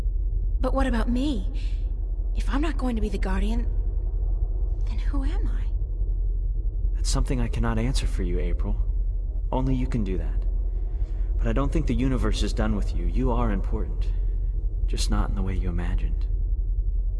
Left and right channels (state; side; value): identical; both; correlation 1.00